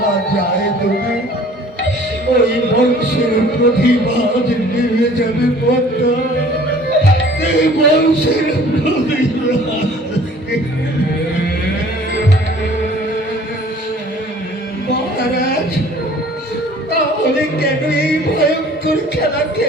যায় দেবে, ওই বংশের প্রতিবাদ নেমে যাবে পদ্মা। এই বংশের প্রতিবাদ। মহারাজ, তাহলে কেন এই ভয়ঙ্কর খেলা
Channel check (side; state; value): both; normal; correlation 0.51